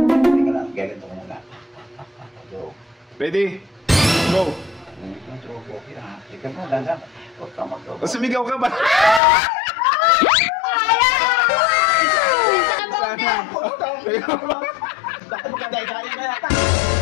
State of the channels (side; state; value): right; drops out; at 9.2 s